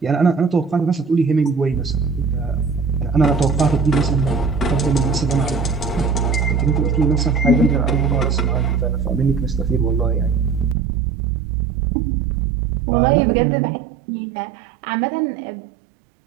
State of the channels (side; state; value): left; drops out; at 10.8 s